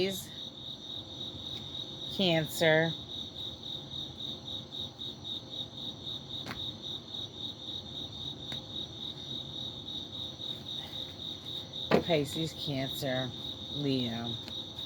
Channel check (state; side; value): identical; both; correlation 1.00